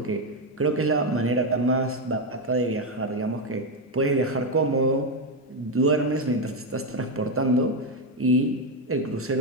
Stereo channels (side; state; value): both; normal; correlation 0.07